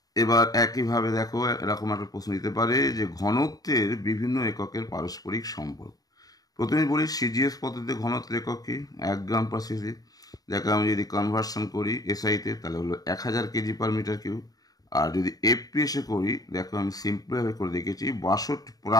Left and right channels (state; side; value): late; right; 0.18 ms